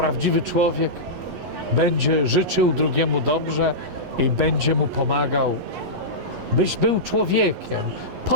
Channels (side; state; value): left; late; 11 ms